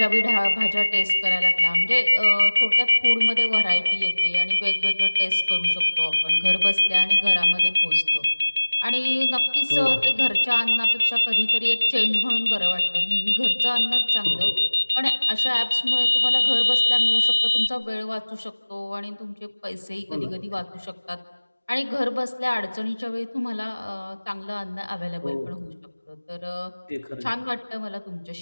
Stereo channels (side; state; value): both; inverted; correlation -1.00